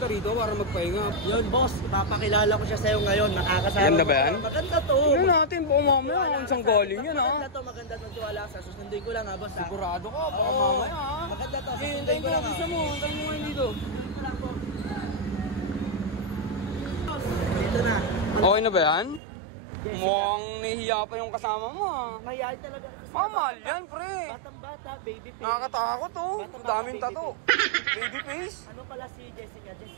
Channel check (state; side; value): drops out; left; at 19.2 s